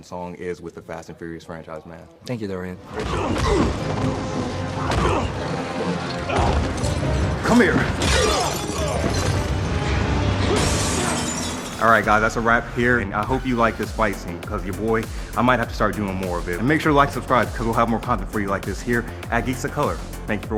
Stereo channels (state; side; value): identical; both; correlation 1.00